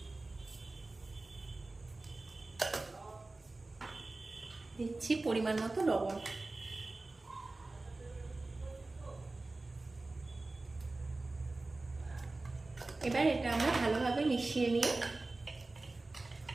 দিচ্ছি পরিমাণ মতো লবণ। এবার এটা আমরা ভালোভাবে মিশিয়ে নিয়ে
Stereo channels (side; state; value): left; quieter; 3.2 dB